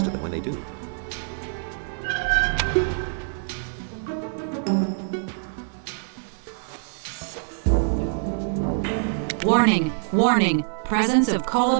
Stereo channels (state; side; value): silent; left; 62 dB below the other